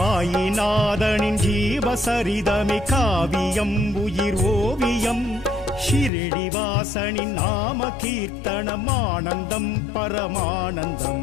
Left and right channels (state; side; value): drops out; right; at 6.1 s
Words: ஜீவசரிதமே காவியம் உயிர் ஓவியம் ஷிரடிவாசனின் நாம கீர்த்தனம் ஆனந்தம்